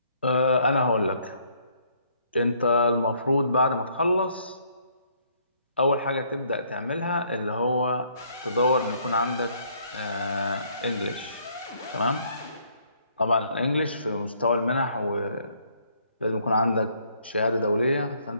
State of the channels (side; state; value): both; inverted; correlation -0.66